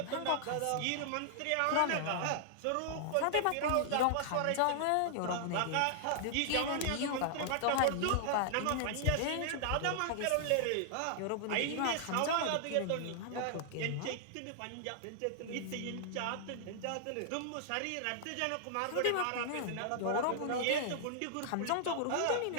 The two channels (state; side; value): different; both; correlation -0.01